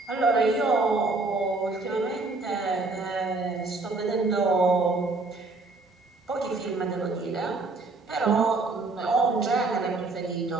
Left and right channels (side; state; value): left; quieter; 3.5 dB